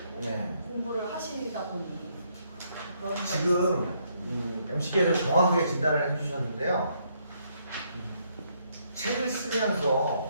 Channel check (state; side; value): inverted; both; correlation -0.73